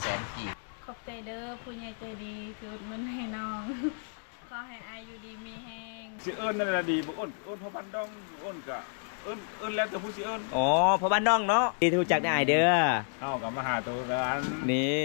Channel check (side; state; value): right; silent; digital silence